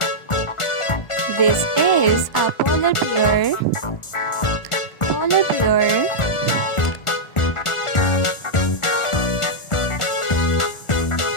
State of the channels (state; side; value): late; right; 1.4 ms